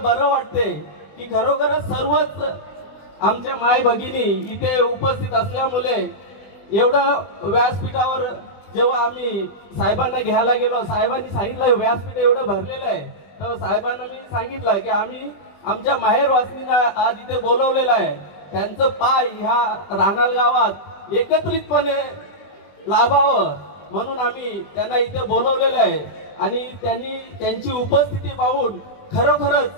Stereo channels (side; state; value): right; late; 20 ms